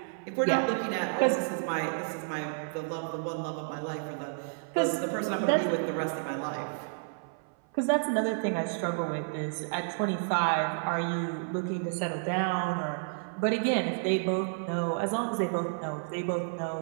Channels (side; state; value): left; silent; 57 dB below the other